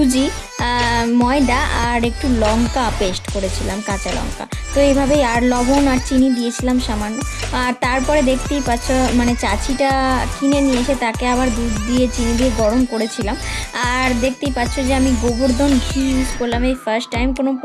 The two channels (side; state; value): both; identical; correlation 1.00